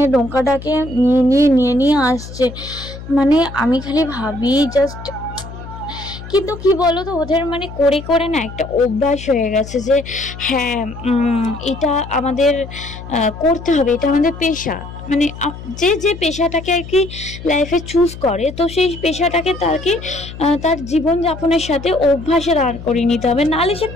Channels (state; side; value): noise; left; hum, 13 dB below the sound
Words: নৌকাটাকে নিয়ে নিয়ে আসছে। মানে আমি খালি ভাবি জাস্ট, কিন্তু কি বলো তো ওদের মানে করে করে না একটা অভ্যাস হয়ে গেছে যে হ্যাঁ এটা আমাদের করতে হবে, এটা আমাদের পেশা। মানে যে পেশাটাকে আর কি লাইফে চুজ করে, তো সেই পেশাটাকে তার জীবনযাপনের সাথে অভ্যাসে দাঁড় করিয়ে নিতে হবে, নাহলে সে